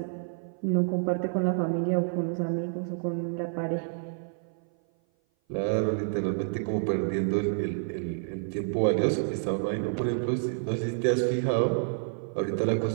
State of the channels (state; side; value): silent; left; 56 dB below the other